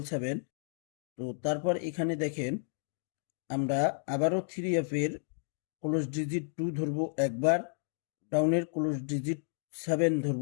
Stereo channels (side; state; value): right; silent; digital silence